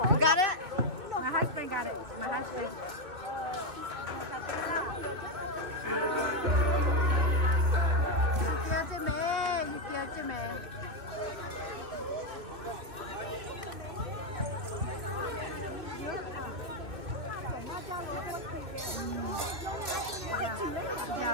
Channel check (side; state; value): left; late; 2.4 ms